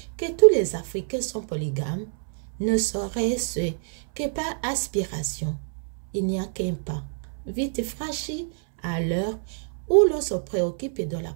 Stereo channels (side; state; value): left; silent; 61 dB below the other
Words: que tous les Africains sont polygames ne serait-ce que par aspiration. Il n'y a qu'un pas, vite franchi à l'heure où l'on se préoccupe de la